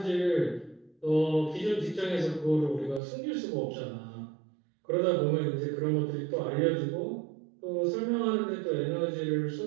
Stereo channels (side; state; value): left; drops out; at 3.0 s